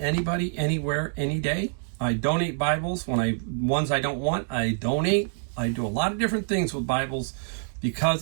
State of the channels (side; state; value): left; silent; digital silence